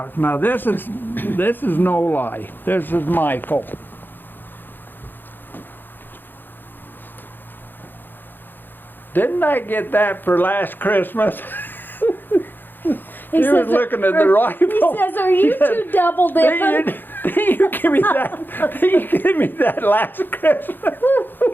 Now this is no lie. This is Michael. Didn't I get that for last Christmas? He was says, looking at the rifle. He says, "Are you two double dipping?" Did you give me that? Did you give me that last Christmas?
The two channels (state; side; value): late; right; 0.093 ms